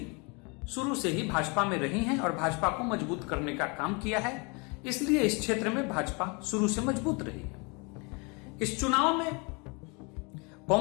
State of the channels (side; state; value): right; quieter; 30.8 dB